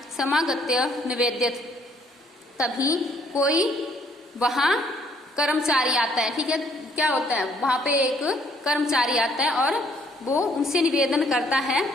समागत्य निवेद्यत। तभी कोई वहां कर्मचारी आता है, ठीक है, क्या होता है, वहां पे एक कर्मचारी आता है और वो उनसे निवेदन करता है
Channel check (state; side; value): normal; both; correlation 0.65